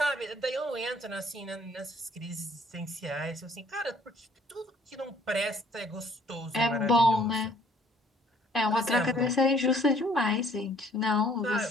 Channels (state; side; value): normal; both; correlation 0.59